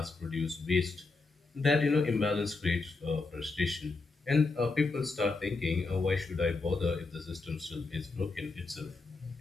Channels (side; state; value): right; quieter; 3.8 dB